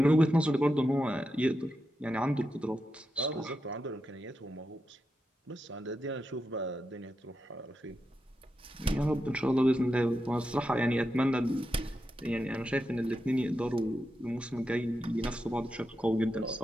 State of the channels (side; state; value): both; normal; correlation 0.87